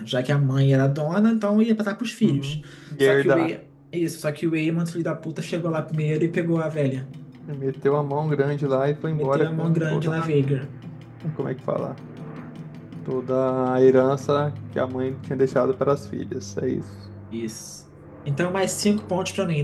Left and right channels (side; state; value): both; identical; correlation 1.00